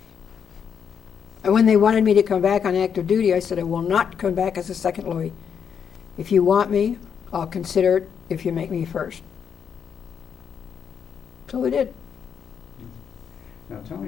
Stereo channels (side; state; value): right; quieter; 7.4 dB